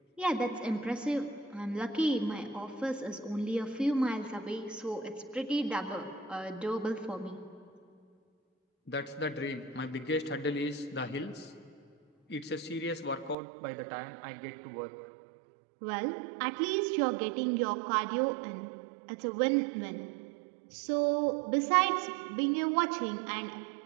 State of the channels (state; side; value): drops out; left; at 13.4 s